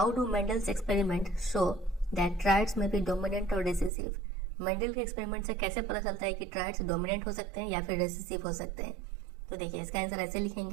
do Mendel's experiment show that triads में बी डोमिनेंट और रिसेसिव। मेंडल के एक्सपेरिमेंट से कैसे पता चलता है कि ट्राइड्स डोमिनेंट हो सकते हैं या फिर रिसेसिव हो सकते हैं। तो देखिए इसका आंसर ऐसे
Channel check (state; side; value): drops out; left; at 3.9 s